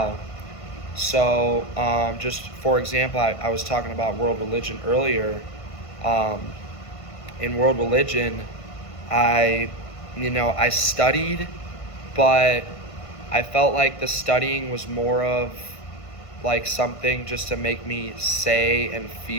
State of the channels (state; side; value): late; right; 1.5 ms